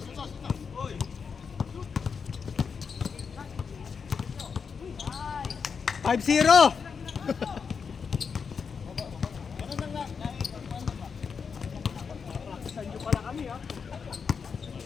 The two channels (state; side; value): quieter; right; 5.9 dB